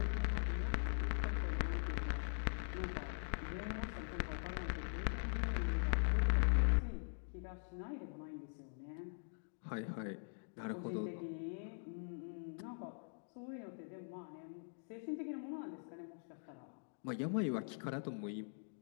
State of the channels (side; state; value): right; silent; digital silence